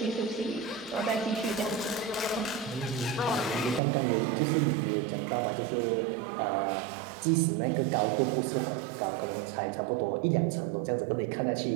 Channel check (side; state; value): left; drops out; at 3.8 s